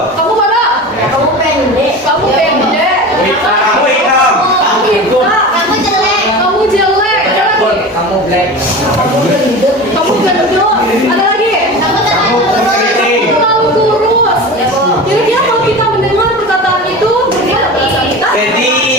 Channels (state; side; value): normal; both; correlation 0.31